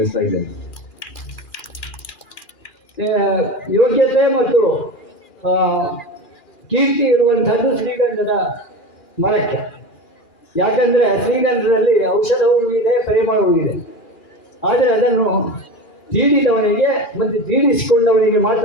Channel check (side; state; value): right; late; 2.4 ms